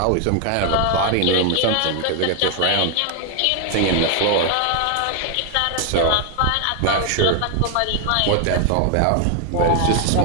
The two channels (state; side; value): different; both; correlation 0.01